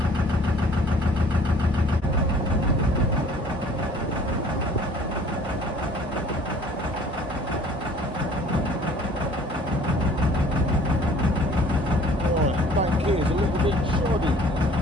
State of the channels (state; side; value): normal; both; correlation 0.53